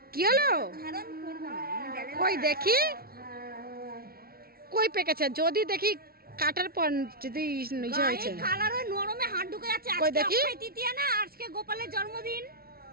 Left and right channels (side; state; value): left; late; 0.44 ms